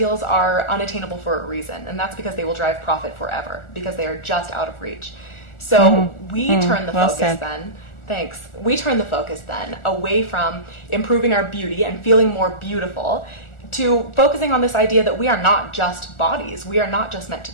are unattainable for a reason, and that's because they will drive profit forever, because they are just out of reach. So we turn the focus then. Thanks. We turn the focus then away from improving our beauty and feeling more beautiful to focusing on this idea that we are not just bodies. We are not just meant to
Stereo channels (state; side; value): late; right; 1.4 ms